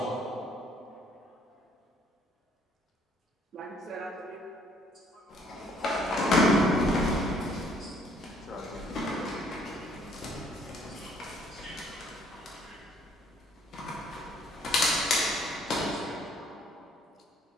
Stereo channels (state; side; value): normal; both; correlation 0.63